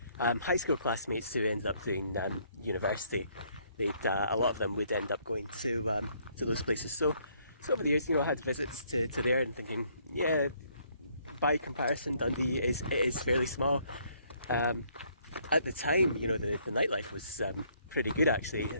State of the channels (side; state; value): both; inverted; correlation -0.67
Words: high school classmates who ended up doing university. A lot of them would end up going to those places. So over the years, I had visits to there and thinking, yeah, by comparison, Dundee is fairly small. At the time, the nightlife was pretty good actually. I